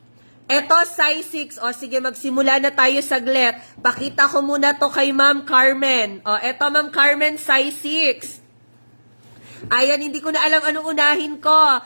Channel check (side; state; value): both; inverted; correlation -1.00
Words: Eto, size 6. Sige, magsimula na tayo saglit. Pakita ko muna to kay Ma'am Carmen. Eto, Ma'am Carmen, size 6. Ayan, hindi ko na alam anong unahin ko.